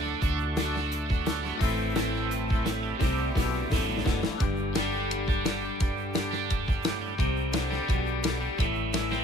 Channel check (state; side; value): normal; both; correlation 0.62